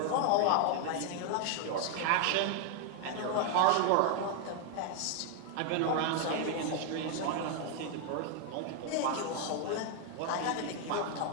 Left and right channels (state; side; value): different; both; correlation 0.00